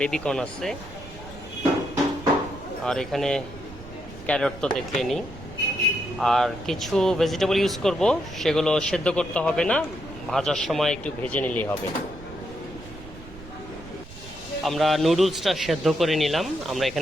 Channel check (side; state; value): right; noise; rumble, 17 dB below the sound